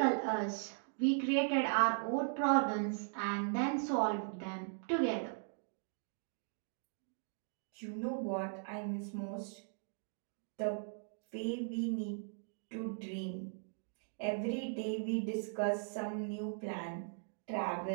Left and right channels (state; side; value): silent; left; digital silence